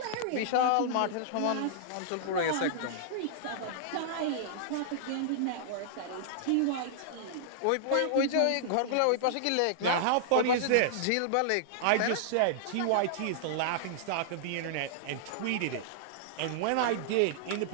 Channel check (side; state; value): both; different; correlation -0.01